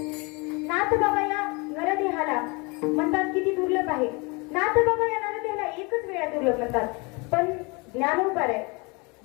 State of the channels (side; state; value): right; quieter; 28.8 dB